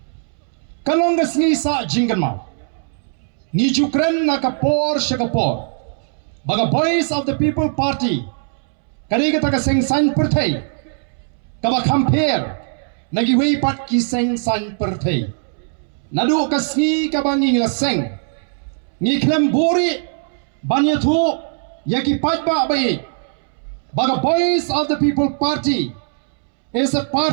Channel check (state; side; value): silent; left; 66 dB below the other